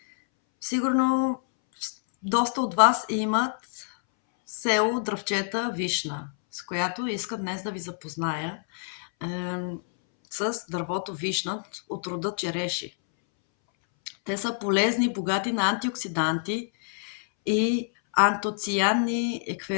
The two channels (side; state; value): right; silent; 60 dB below the other